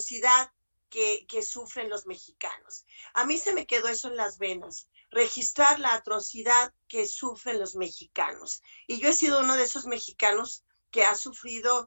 que sufren los mexicanos. A mí se me quedó eso en las venas, registrar la atrocidad que sufren los mexicanos. Y yo he sido uno de esos mexicanos que ha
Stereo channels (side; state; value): both; inverted; correlation -1.00